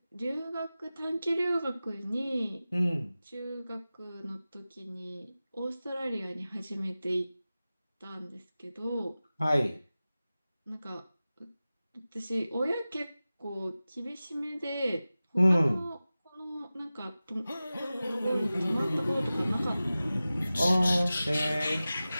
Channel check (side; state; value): both; inverted; correlation -0.96